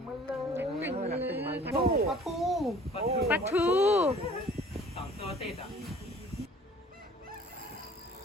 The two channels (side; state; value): both; normal; correlation 0.51